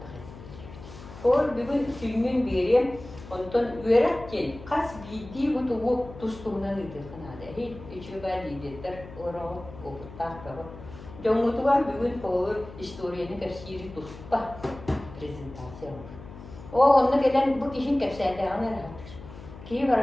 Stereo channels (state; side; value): noise; left; hum, 15 dB below the sound